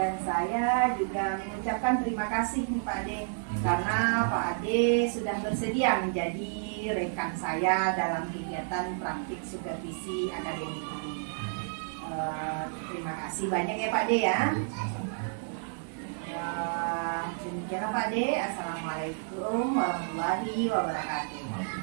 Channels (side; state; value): left; silent; 55 dB below the other